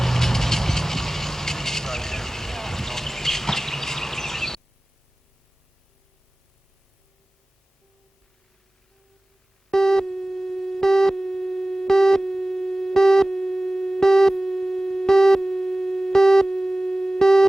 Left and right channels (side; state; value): both; normal; correlation 0.98